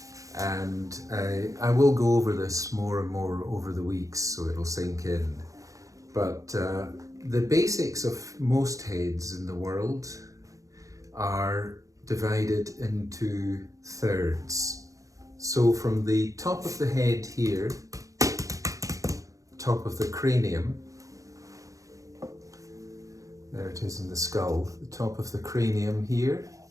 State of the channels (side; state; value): left; late; 0.16 ms